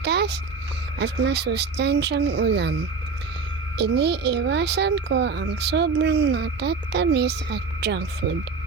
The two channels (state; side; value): quieter; left; 4.6 dB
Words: at masustansyang ulam. Iniiwasan ko ang sobrang matatamis at junk food.